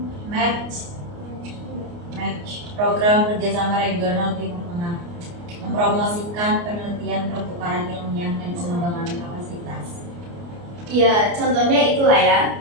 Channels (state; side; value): late; left; 29 ms